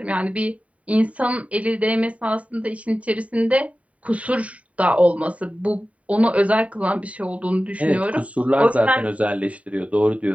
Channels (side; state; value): left; late; 0.067 ms